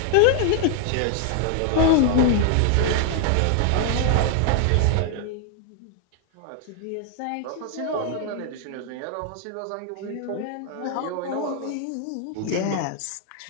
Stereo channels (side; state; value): both; different; correlation 0.00